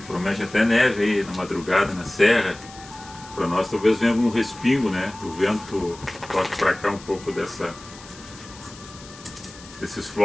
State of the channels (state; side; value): noise; left; hiss, 19 dB below the sound